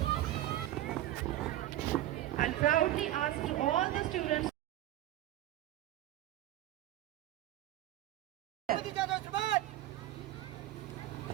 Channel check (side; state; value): left; quieter; 14.2 dB